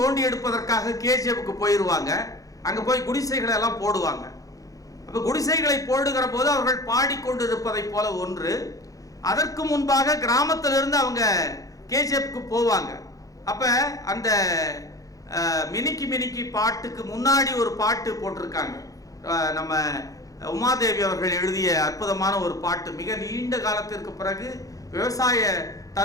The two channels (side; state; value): right; late; 0.17 ms